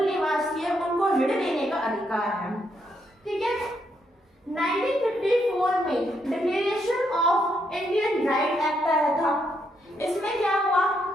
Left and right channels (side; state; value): both; normal; correlation 0.77